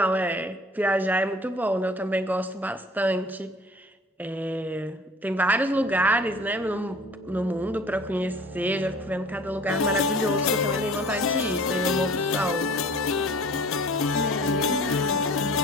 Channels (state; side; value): normal; both; correlation 0.47